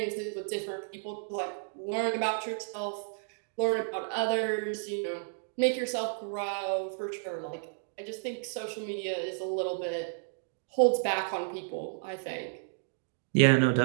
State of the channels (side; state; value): left; silent; digital silence